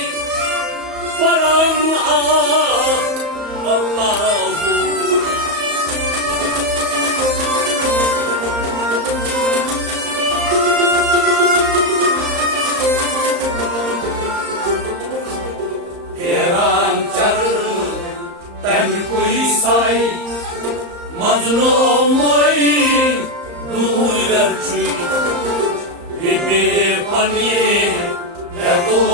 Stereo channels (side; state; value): left; late; 34 ms